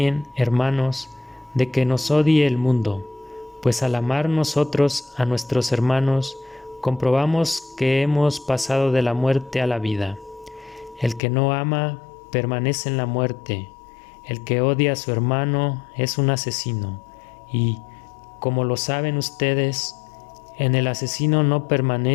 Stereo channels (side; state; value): right; drops out; at 11.2 s